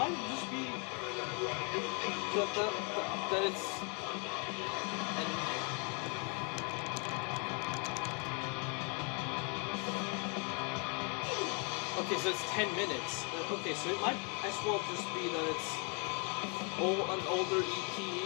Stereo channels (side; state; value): right; quieter; 36.9 dB